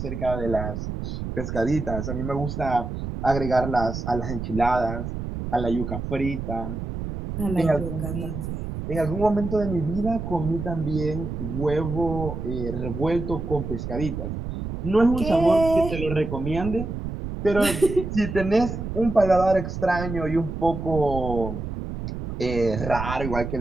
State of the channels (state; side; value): noise; right; rumble, 6 dB below the sound